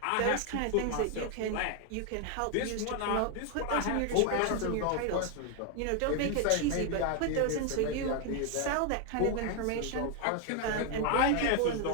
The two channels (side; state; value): both; different; correlation 0.01